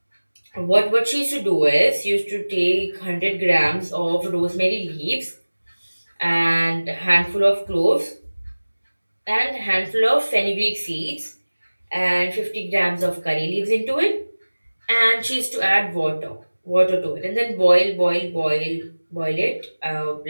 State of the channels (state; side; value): inverted; both; correlation -1.00